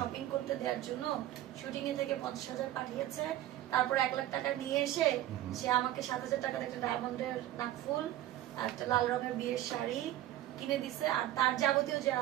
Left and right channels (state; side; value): quieter; left; 13.8 dB